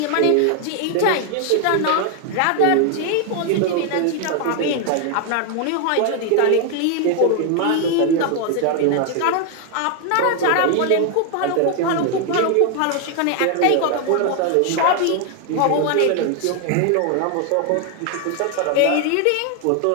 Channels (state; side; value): different; both; correlation 0.00